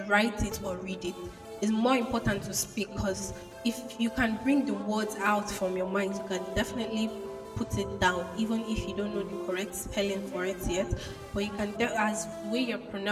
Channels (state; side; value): identical; both; correlation 1.00